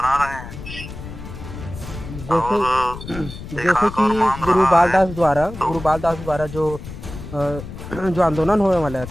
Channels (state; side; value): noise; left; rumble, 11 dB below the sound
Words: रहे हैं। जैसे कि गुरुबाल दास द्वारा जो आंदोलन होने वाला